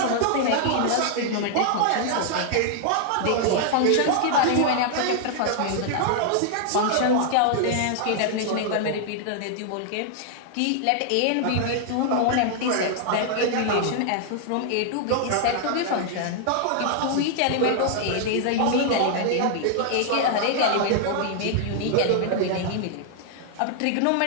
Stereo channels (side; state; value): both; different; correlation 0.00